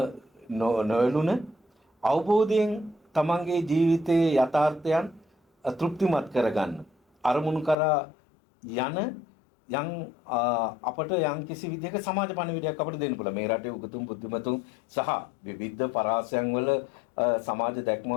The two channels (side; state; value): right; drops out; at 7.8 s